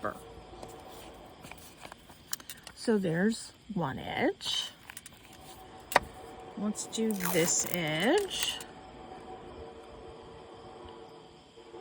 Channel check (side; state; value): both; identical; correlation 1.00